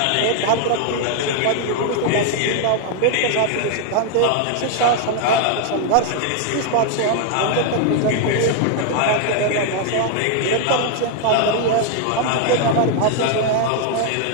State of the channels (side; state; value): both; different; correlation 0.00